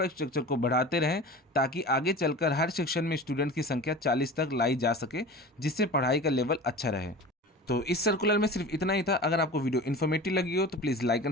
को बढ़ाते रहें ताकि आगे चलकर हर सेक्शन में स्टूडेंट की संख्या 40 तक लाई जा सके, जिससे पढ़ाई का लेवल अच्छा रहे। तो इस सर्कुलर में सिर्फ इतना ही था। अगर आपको वीडियो इन्फॉर्मेटिव लगी हो तो please like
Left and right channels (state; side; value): normal; both; correlation 0.35